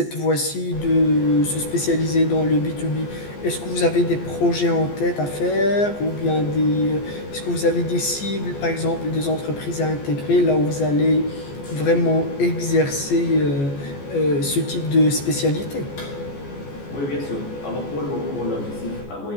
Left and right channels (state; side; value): late; right; 14 ms